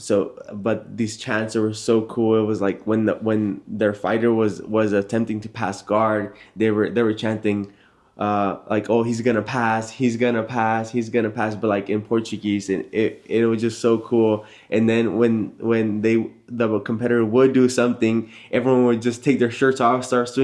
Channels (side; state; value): both; identical; correlation 1.00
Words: these chants were so cool. It was like when their fighter was attempting to pass guard, they were chanting, like, oh, he's gonna pass, he's gonna pass, he's gonna pass, but like in Portuguese, and it was just so cool. And then when the competitor would do something, everyone would just take their shirts off, start